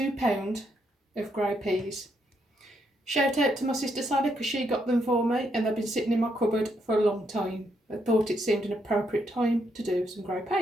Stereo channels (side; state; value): both; normal; correlation 0.77